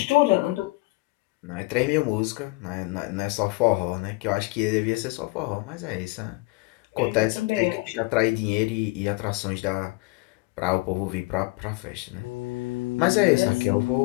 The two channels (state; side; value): quieter; right; 24.2 dB